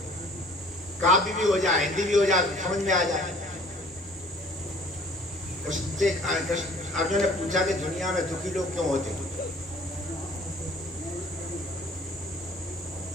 काव्य भी हो जाए, हिंदी भी हो जाए, समझ में आ जाए। अर्जुन ने पूछा कि दुनिया में दुखी लोग क्यों होते?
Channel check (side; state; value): both; normal; correlation 0.52